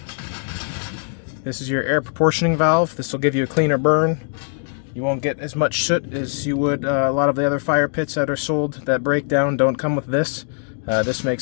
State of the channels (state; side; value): silent; right; 65 dB below the other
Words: This is your air proportioning valve. This will give you a cleaner burn. You won't get as much soot as you would a lot of the other fire pits that are sold that break down don't come with this. This